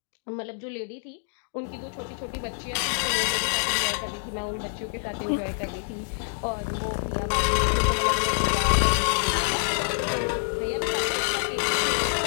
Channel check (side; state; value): right; silent; digital silence